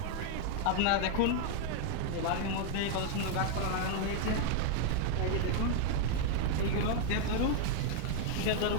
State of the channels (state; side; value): different; both; correlation 0.00